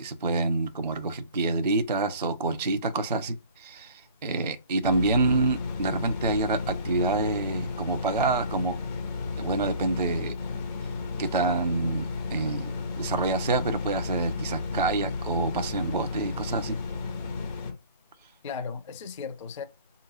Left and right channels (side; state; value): both; inverted; correlation -0.48